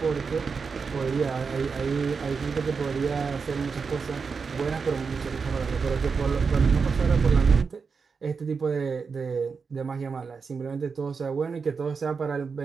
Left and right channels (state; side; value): quieter; left; 5.3 dB